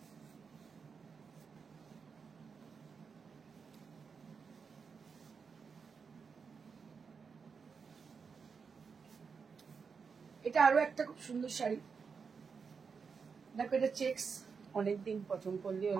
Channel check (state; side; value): quieter; left; 5.6 dB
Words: এটা আরো একটা খুব সুন্দর শাড়ি। দেখো, এটা চেক্স। অনেকদিন পছন্দ করলি